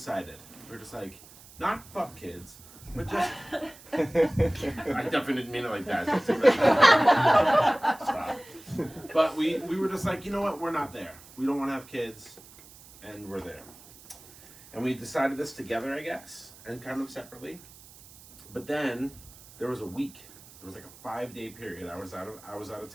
We were just like, not fuck kids, but just. I definitely didn't mean it like that. Stop. But we were just like, you know what? We're not there. We don't want to have kids, and we're there. And we decided this together, I guess, and kind of separately. But then there was a week. There was like a 5-day period. I was out of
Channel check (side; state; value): right; noise; hiss, 21 dB below the sound